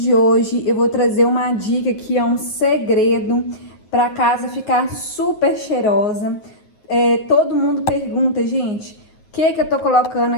hoje eu vou trazer uma dica que é um segredo para a casa ficar super cheirosa. Todo mundo pergunta, gente, o que eu tô colocando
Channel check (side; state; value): right; late; 9.4 ms